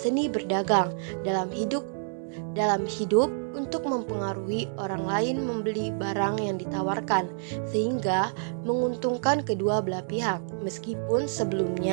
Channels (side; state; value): left; silent; 59 dB below the other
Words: berdagang, dalam hidup untuk mempengaruhi orang lain membeli barang yang ditawarkan, sehingga menguntungkan kedua belah pihak, meskipun